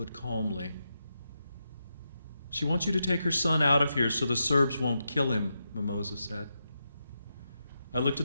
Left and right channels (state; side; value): inverted; both; correlation -0.86